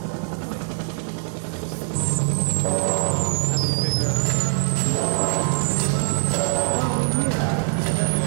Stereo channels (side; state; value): left; silent; 61 dB below the other